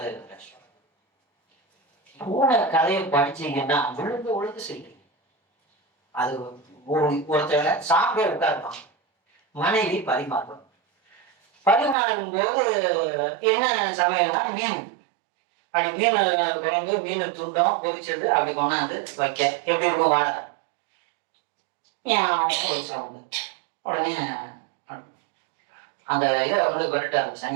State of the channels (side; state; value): left; drops out; at 12.0 s